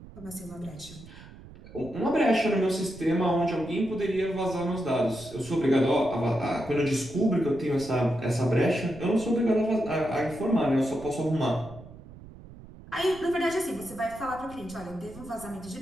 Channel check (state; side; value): noise; right; rumble, 18 dB below the sound